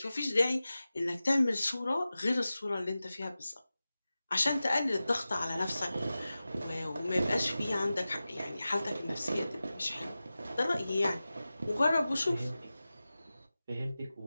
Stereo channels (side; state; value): both; inverted; correlation -0.95